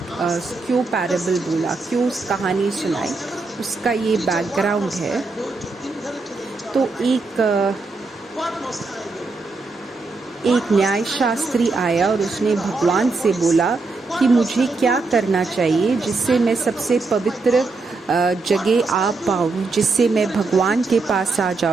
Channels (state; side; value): quieter; left; 3.8 dB